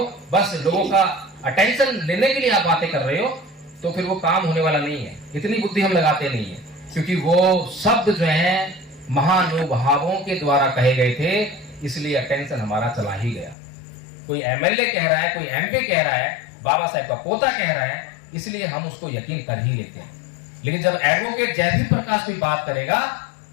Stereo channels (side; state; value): right; drops out; at 13.6 s